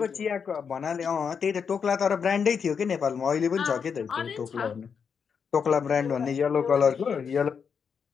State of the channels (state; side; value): quieter; right; 6.5 dB